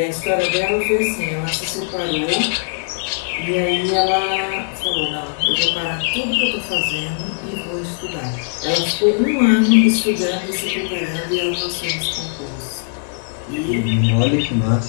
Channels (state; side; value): silent; right; 66 dB below the other